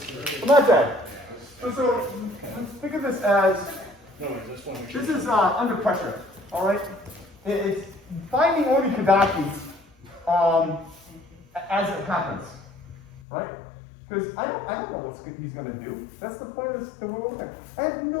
Not that. So think of this as, No, I just want to make sure. this is under pressure, all right? It's finding Oni Kudaki as it happens, right? Because I don't know what he's going to do. That's the point of this, that we're looking at. I have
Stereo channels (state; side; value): drops out; right; at 13.2 s